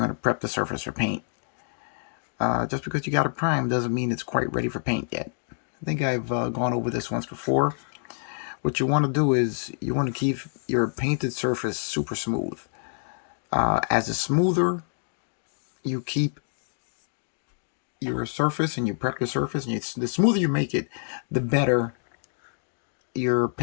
to prep the surface for paint. Just because you got it primed doesn't mean it's quite ready for paint yet. I think I've gone over this once before. What you want to do is you want to keep your painted surface super smooth. As the smoother you keep your surface and you prep your surface, and the smoother you make it, the better your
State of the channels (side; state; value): right; silent; 60 dB below the other